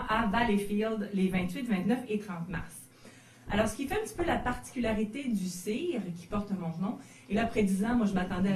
à Valleyfield, les 28, 29 et 30 mars. Alors, ce qui fait un petit peu la particularité du CIR, qui porte mon nom, et là, après 10 ans, moi, je m'attendais à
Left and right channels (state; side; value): identical; both; correlation 1.00